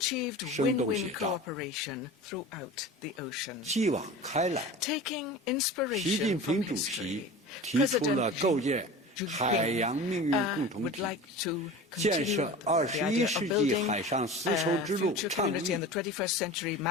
win-win cooperation throughout the ocean. Taking inspiration from history, President Xi would like to continue the idea of building a future community in the 21st century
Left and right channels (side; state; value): both; normal; correlation 0.35